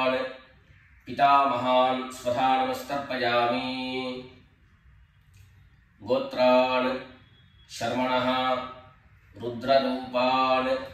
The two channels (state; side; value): identical; both; correlation 1.00